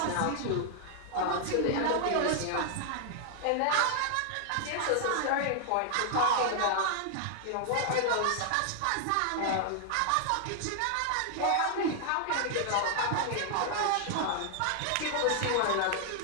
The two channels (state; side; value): different; both; correlation 0.00